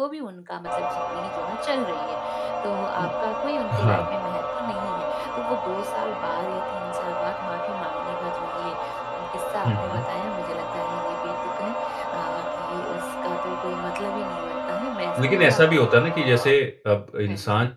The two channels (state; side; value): identical; both; correlation 1.00